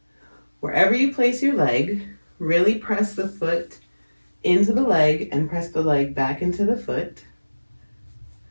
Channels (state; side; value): inverted; both; correlation -1.00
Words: Wherever you place your leg, Really press the foot into the leg and press the leg back into the foot.